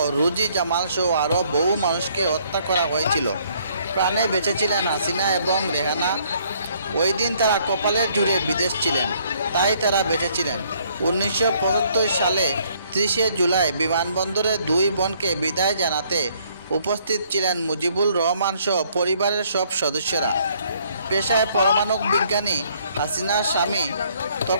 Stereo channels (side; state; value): both; inverted; correlation -0.65